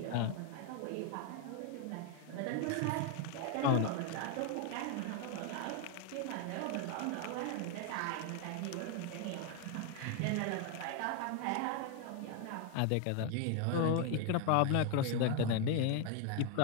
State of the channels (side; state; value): both; different; correlation 0.01